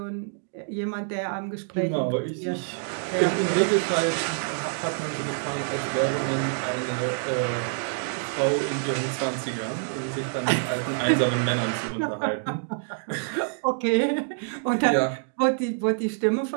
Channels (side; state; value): left; silent; digital silence